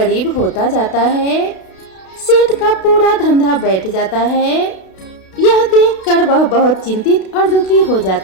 होता जाता है। सेठ का पूरा धंधा बैठ जाता है। यह देखकर वह बहुत चिंतित और दुखी हो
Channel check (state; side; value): late; right; 32 ms